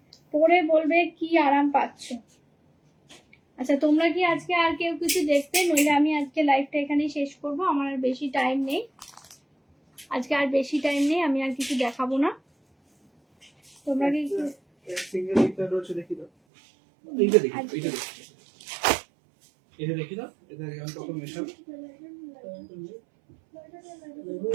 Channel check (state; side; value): drops out; left; at 16.3 s